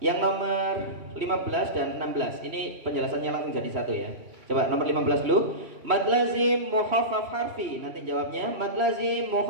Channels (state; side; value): late; left; 3.1 ms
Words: yang nomor 15 dan 16. Ini penjelasannya langsung jadi satu ya. Coba nomor 15 dulu. Mad lazim mukhaffaf harfi. Nanti jawabnya. Mad lazim